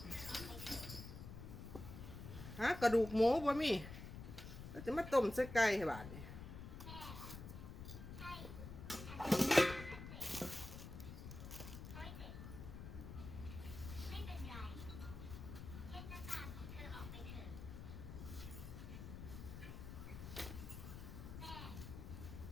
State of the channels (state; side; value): noise; left; rumble, 10 dB below the sound